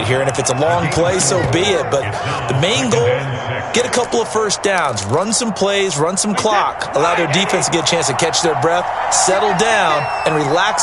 here, and if it's a long play, so be it. But the main goal, get a couple of 1st downs, run some plays, run some clock, allow their defense to get a chance to catch their breath, settle down, and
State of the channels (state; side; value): identical; both; correlation 1.00